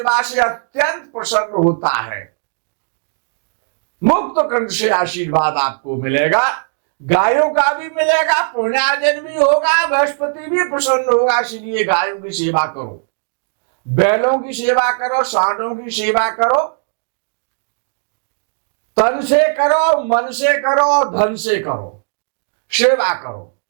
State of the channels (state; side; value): silent; left; digital silence